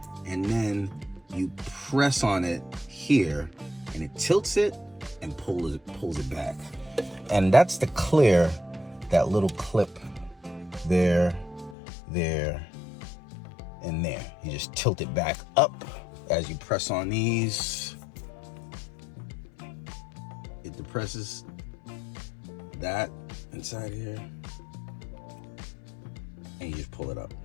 and then you press on it here, and it tilts it and pulls it back. And that's to clear that little clip there, and there. You just tilt it back up as you press on these. It depresses that inside here, and you just pull it up.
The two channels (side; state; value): right; drops out; at 11.8 s